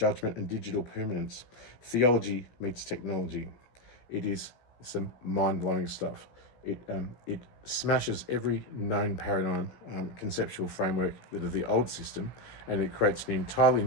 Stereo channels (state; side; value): late; right; 16 ms